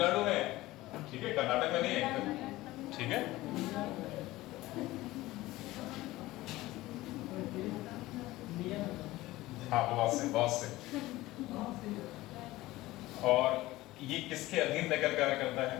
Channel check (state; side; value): quieter; right; 17.9 dB